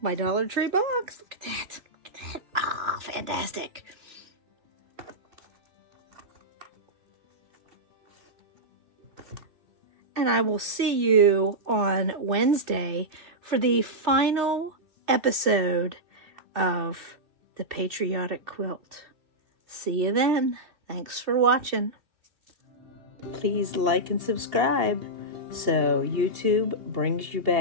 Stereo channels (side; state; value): left; late; 2.7 ms